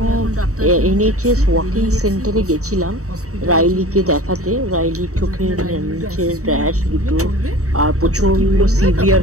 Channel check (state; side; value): late; left; 0.65 ms